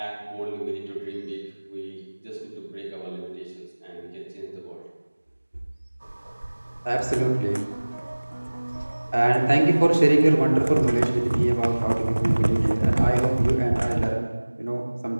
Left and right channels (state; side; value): inverted; both; correlation -1.00